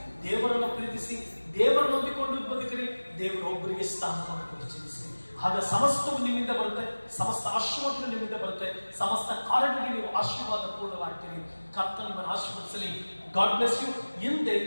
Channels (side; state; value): both; inverted; correlation -1.00